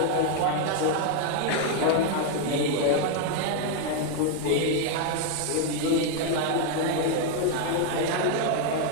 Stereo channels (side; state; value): both; different; correlation 0.01